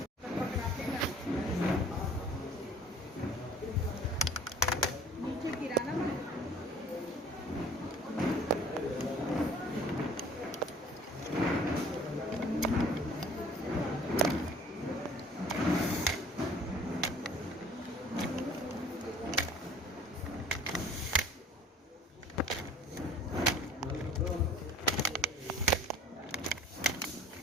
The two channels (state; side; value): normal; both; correlation 0.51